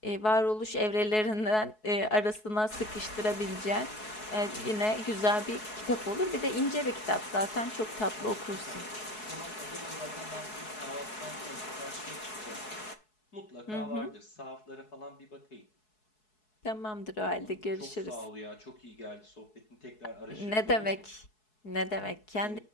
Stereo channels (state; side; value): late; right; 4.7 ms